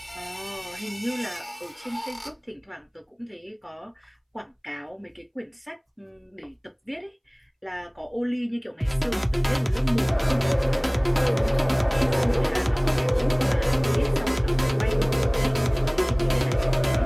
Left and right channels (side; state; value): both; identical; correlation 1.00